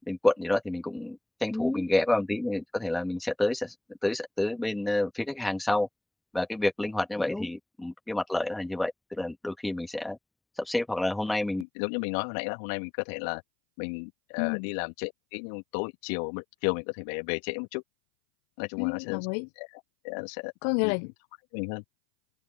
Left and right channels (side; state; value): right; drops out; at 11.7 s